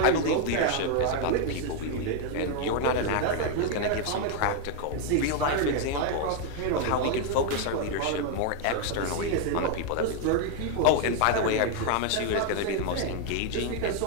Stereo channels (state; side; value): different; both; correlation 0.01